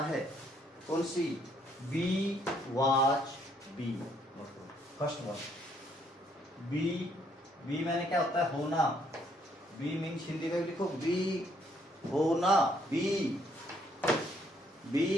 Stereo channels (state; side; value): normal; both; correlation 0.68